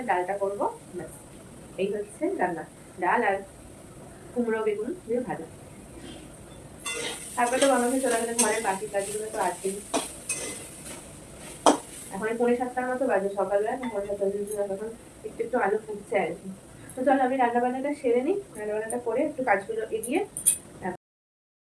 ডালটা করবো। এই হচ্ছে রান্না, ডাল আর কুমড়ো বেগুন দিয়ে ভাজা। তারপরে তো বানাতে চলে গেলে ঘরের বাকি কাজগুলো তো আছেই। এখন 6:45 মতো বাজে, সকালবেলা 7:45 তখন একটু একটু আলু ফুটছে আর কি। তো চলো আমি রান্না বান্নাটা সেরে নিই, রান্না বান্নাটা করে একটু কাজগুলো এগিয়ে।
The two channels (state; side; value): identical; both; correlation 1.00